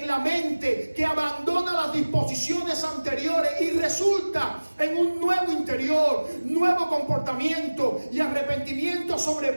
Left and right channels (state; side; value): inverted; both; correlation -1.00